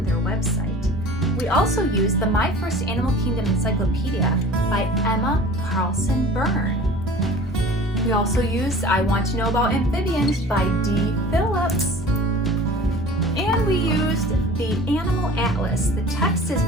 their website. We also used the My First Animal Kingdom Encyclopedia by Emma Carlson Byrne. We also used I Want to Know About Amphibians by D. Phillips. And we used the Animal Atlas. The text is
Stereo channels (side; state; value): both; normal; correlation 0.43